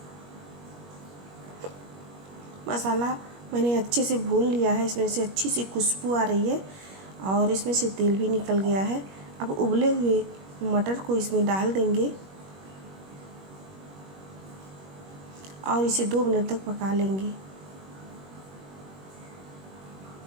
मसाला मैंने अच्छे से भून लिया है। इसमें से अच्छी सी खुशबू आ रही है और इसमें से तेल भी निकल गया है। अब उबले हुए मटर को इसमें डाल देंगे और इसे 2 मिनट तक पका लेंगे।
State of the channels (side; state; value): left; late; 21 ms